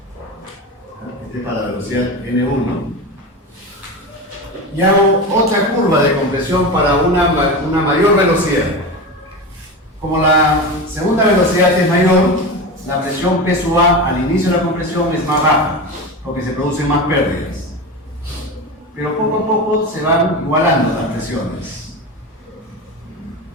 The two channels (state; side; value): normal; both; correlation 0.24